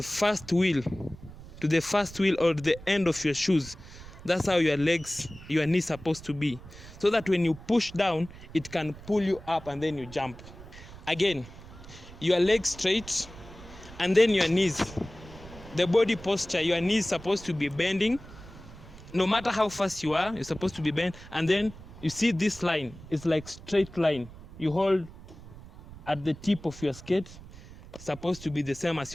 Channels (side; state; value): right; noise; rumble, 17 dB below the sound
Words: first wheel or the end of your shoes. That's how your knees supposed to be, so that when you push down, it can pull you up and then you jump. Again, your legs straight, and then your knees, the body posture, your knees supposed to be bending. No matter how fast you are, you're supposed to be bent. And then you see this line, it's like straight line. You hold at the tip of your skate, supposed to be the same as